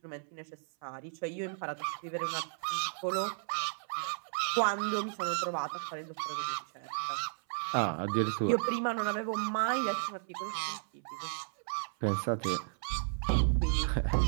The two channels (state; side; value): silent; left; 55 dB below the other